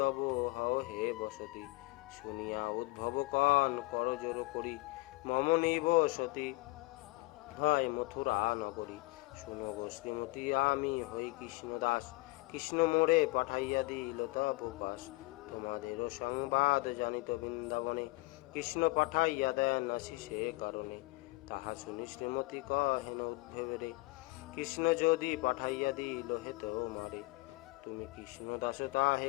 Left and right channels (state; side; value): quieter; right; 22.9 dB